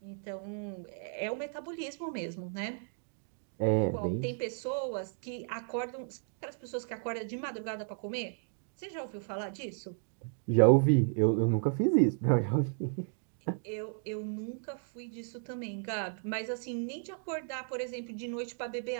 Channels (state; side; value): silent; left; 55 dB below the other